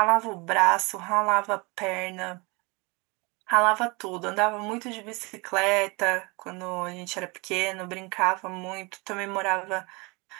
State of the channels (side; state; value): left; quieter; 27.4 dB